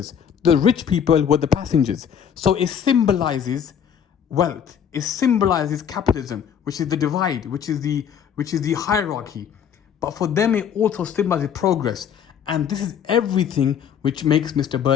The rich people were the passengers. So it symbolizes wealth. It symbolizes capitalism, which is the divide, which is the hierarchy. But for them, it also symbolizes progress. And this is everything which makes Mr.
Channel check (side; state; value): right; quieter; 8.2 dB